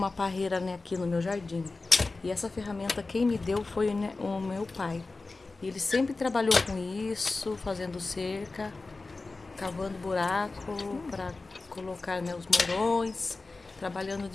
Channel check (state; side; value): quieter; right; 3.6 dB